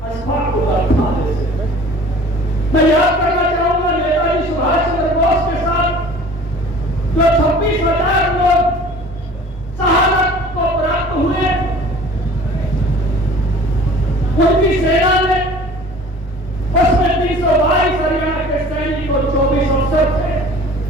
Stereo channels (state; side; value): normal; both; correlation 0.46